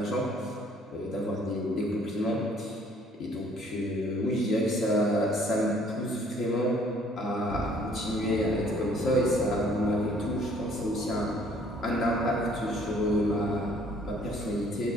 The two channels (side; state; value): both; normal; correlation 0.59